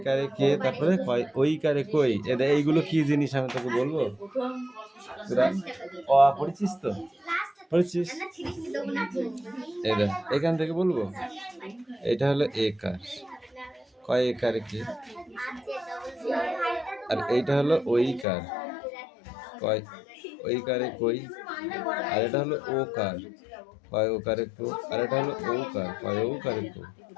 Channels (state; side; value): drops out; right; at 18.2 s